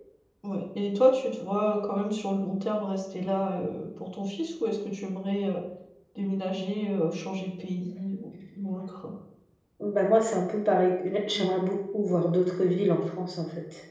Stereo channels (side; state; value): both; identical; correlation 1.00